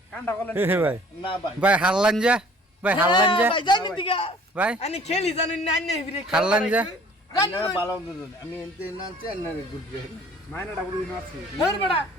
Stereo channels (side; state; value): both; normal; correlation 0.53